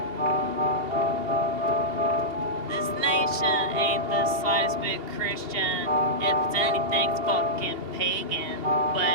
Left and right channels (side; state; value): left; late; 2.7 ms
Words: This nation ain't the slightest bit Christian. If it's anything, it's fucking pagan.